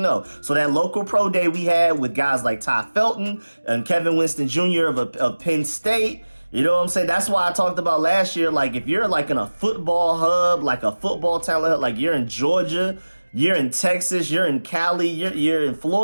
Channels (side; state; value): both; inverted; correlation -1.00